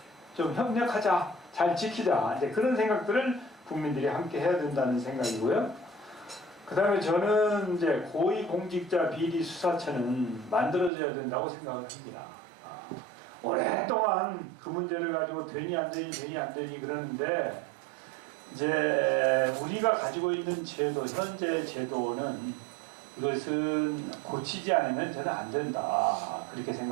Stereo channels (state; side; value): drops out; left; at 10.9 s